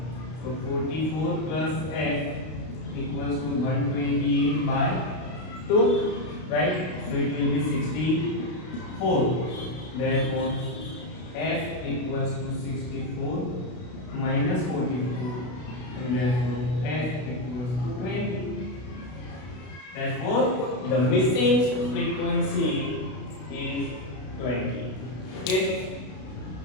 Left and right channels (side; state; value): right; late; 32 ms